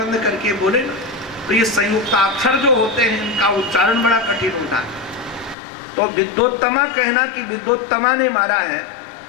करके बोले ना। तो ये संयुक्ताक्षर जो होते हैं इनका उच्चारण बड़ा कठिन होता है। तो विद्योत्तमा कहना कि विद्योत्तमा ने मारा है,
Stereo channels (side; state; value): right; drops out; at 5.6 s